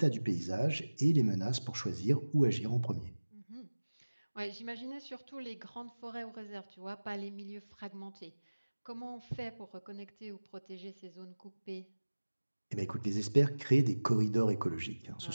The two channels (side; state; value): both; inverted; correlation -1.00